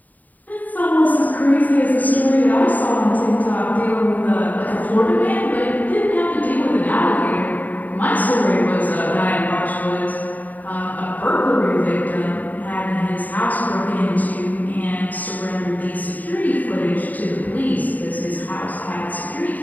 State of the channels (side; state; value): right; late; 0.081 ms